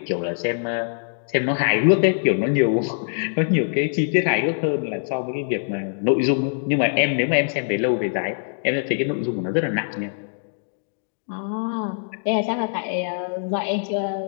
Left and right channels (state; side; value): silent; right; digital silence